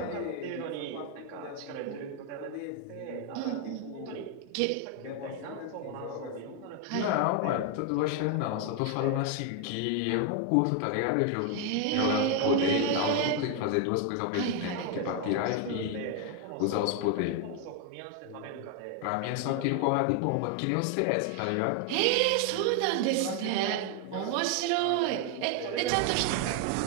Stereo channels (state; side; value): different; both; correlation 0.01